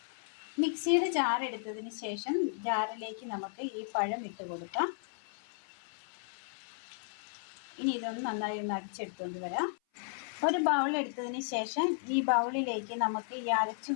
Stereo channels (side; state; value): right; silent; 55 dB below the other